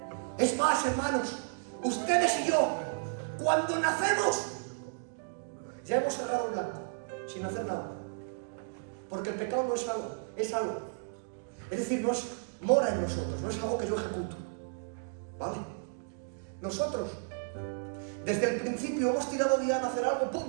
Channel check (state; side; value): silent; left; digital silence